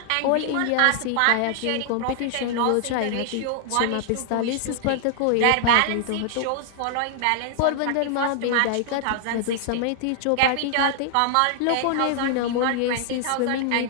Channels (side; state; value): both; different; correlation 0.00